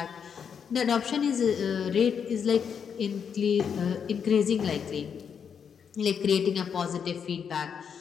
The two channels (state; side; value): quieter; right; 7.2 dB